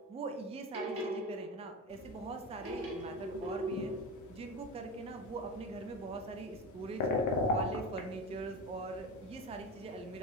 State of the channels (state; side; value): normal; both; correlation 0.23